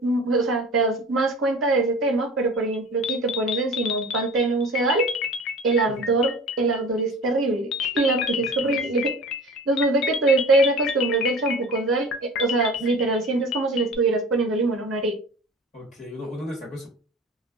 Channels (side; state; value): both; normal; correlation 0.39